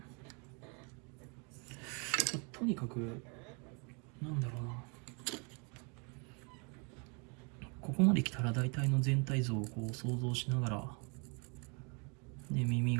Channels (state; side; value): quieter; left; 34.4 dB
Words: とにかくなんだろうな、ここまで来たら大体の全体像をこう想像しながら、で耳